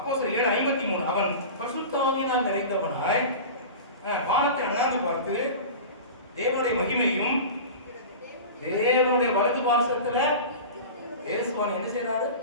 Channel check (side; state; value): both; inverted; correlation -0.33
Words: 7:53 அவன் பரிசுத்த ஆவியினால் நிறைந்தவனாய் வானத்தை அண்ணாந்து பார்த்து தேவனுடைய மகிமையும் தேவனுடைய வலது பார்சத்துல இயேசுவான் என்ன செய்யறாரு?